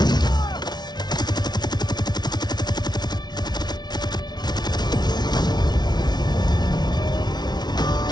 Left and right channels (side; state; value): right; late; 0.20 ms